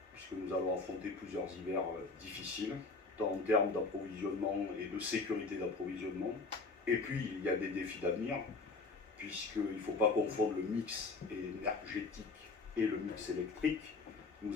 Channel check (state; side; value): quieter; right; 3.9 dB